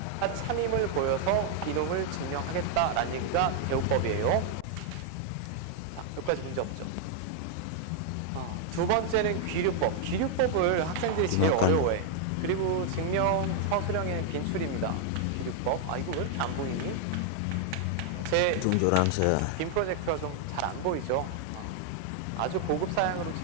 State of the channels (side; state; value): both; different; correlation 0.00